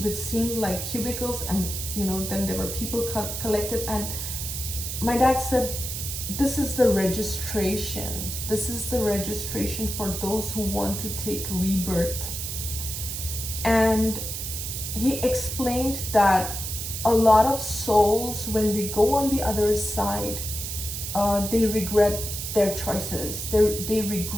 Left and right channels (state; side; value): noise; right; hiss, 5 dB below the sound